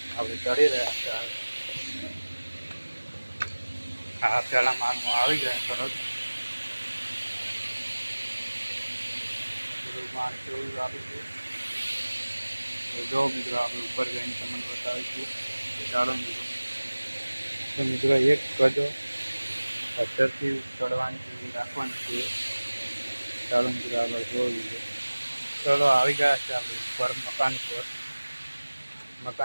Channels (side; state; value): both; inverted; correlation -1.00